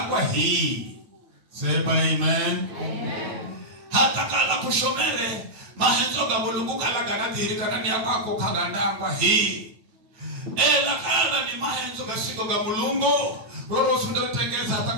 hii. Sema amen. Amen. Hata kala kushomere mahenzo ga Mulungu kala ganadirika ndani yako kagandangwa hii. lakala ni mahenzo gasiko ga mulungu roro sunda tengeza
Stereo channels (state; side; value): late; left; 9.1 ms